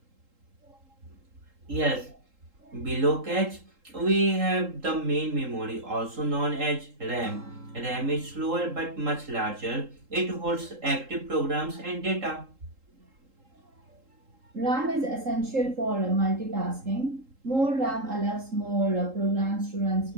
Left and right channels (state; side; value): late; left; 3.8 ms